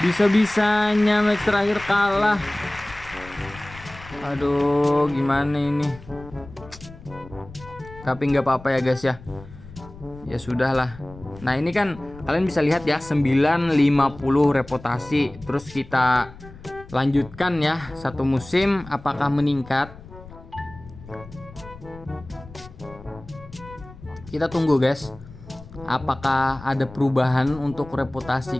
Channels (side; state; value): left; noise; rumble, 18 dB below the sound